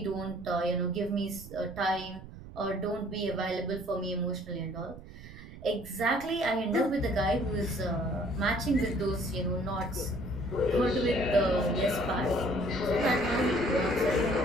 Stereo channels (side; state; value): right; noise; rumble, 15 dB below the sound